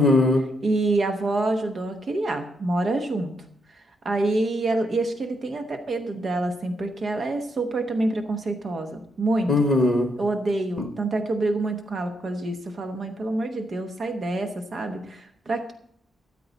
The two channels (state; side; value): normal; both; correlation 0.79